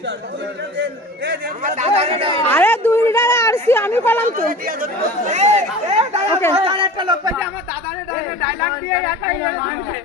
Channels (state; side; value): normal; both; correlation 0.38